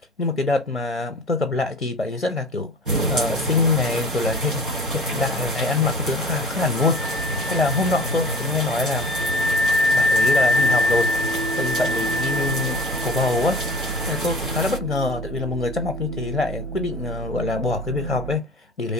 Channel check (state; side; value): normal; both; correlation 0.42